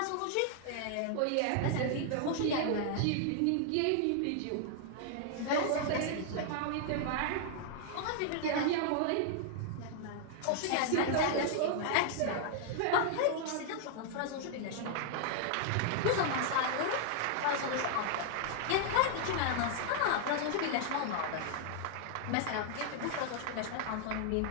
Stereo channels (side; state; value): both; different; correlation 0.00